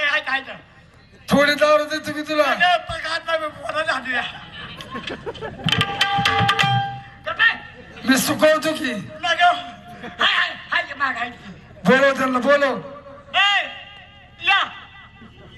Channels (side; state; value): both; identical; correlation 1.00